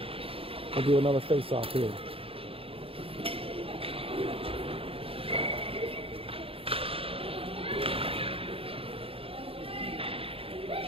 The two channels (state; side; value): late; left; 0.27 ms